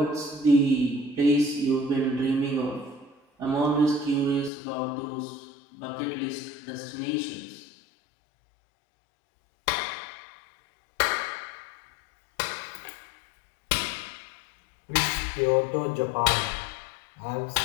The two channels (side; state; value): right; drops out; at 4.5 s